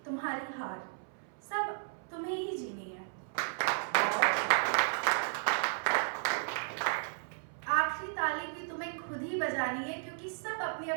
तुम्हारी हार सब तुम्हें ही जीनी है। आखिरी ताली भी तुम्हें खुद ही बजानी है, क्योंकि सब अपनी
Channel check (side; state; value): left; silent; 55 dB below the other